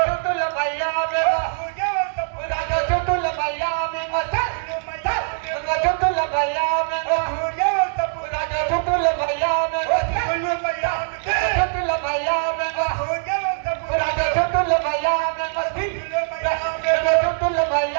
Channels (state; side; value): silent; left; digital silence